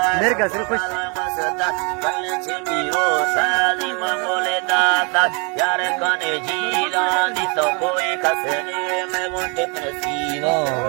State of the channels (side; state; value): left; quieter; 33.8 dB